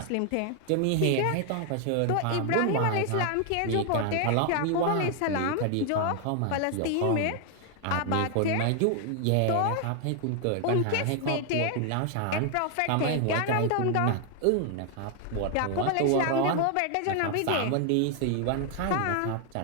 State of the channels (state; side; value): different; both; correlation 0.00